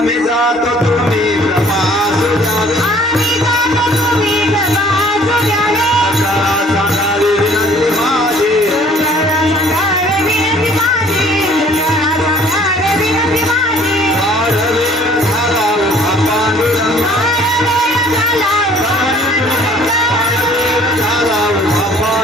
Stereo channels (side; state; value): both; normal; correlation 0.55